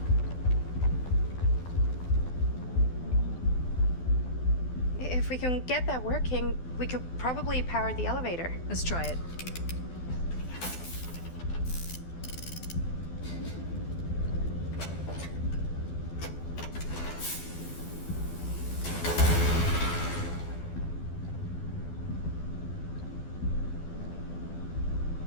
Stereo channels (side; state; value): right; late; 12 ms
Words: If we can get that working, we could probably power the elevator. Let's try it.